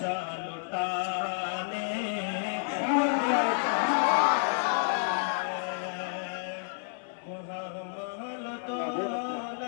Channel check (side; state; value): right; silent; 58 dB below the other